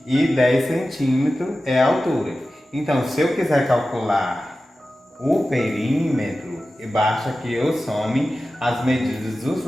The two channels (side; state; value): both; normal; correlation 0.94